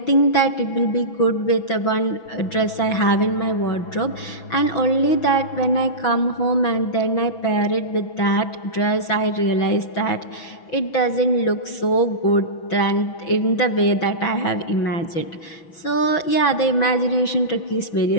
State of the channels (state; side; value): late; right; 6.1 ms